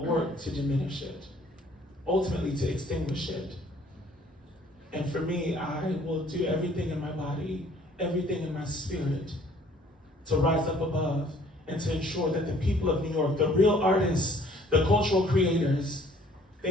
work to diminish it, ultimately to extinguish it. And for me, I will do everything in my body, everything in my spirit, to rise up above and to ensure that the people of New York, the real artists, the cultural creators,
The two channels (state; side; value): normal; both; correlation 0.58